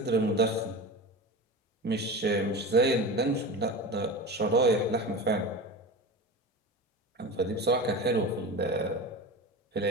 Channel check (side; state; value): both; normal; correlation 0.29